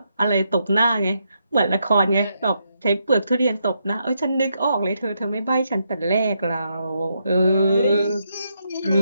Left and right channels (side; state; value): both; inverted; correlation -0.80